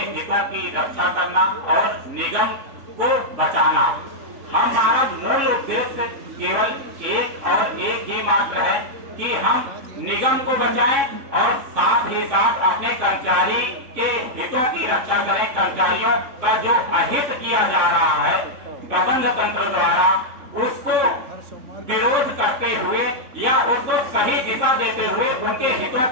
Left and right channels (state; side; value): late; left; 3.6 ms